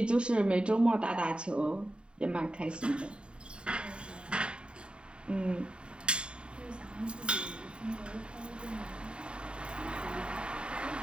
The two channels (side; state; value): left; late; 0.052 ms